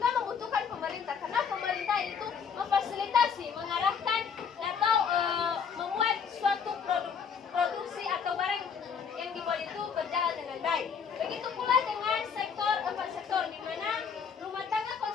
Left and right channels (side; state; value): right; quieter; 6.6 dB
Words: membutuhkan pemerintah, karena pemerintah itu memfasilitasi, mengarahkan atau membuat suatu produksi atau barang yang dibuat itu berjalan dengan baik. Begitu pula dengan empat sektor, di mana rumah tangga